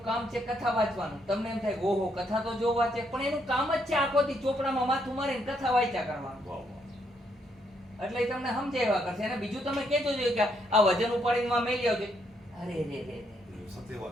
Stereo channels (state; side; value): normal; both; correlation 0.74